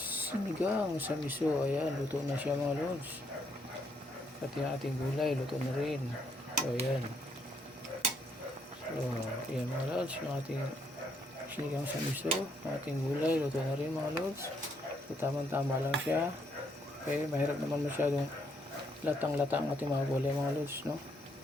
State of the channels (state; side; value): normal; both; correlation 0.73